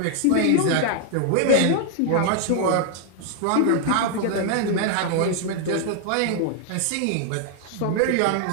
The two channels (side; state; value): both; different; correlation 0.00